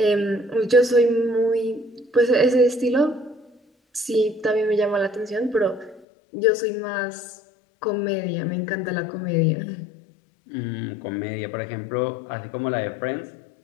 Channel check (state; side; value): drops out; right; at 6.1 s